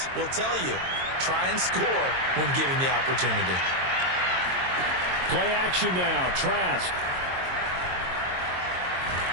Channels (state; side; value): late; left; 22 ms